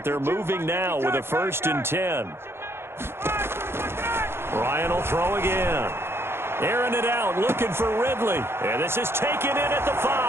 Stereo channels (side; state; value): left; late; 0.12 ms